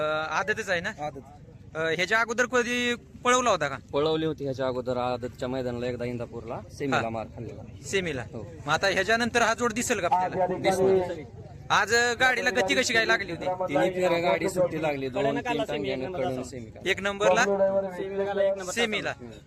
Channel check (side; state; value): both; identical; correlation 1.00